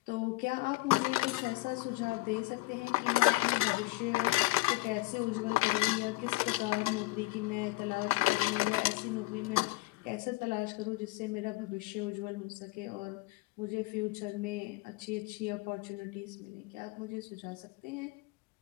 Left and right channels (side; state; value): right; quieter; 20.2 dB